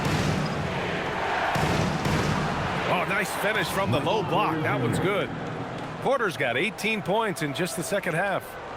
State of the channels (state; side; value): identical; both; correlation 1.00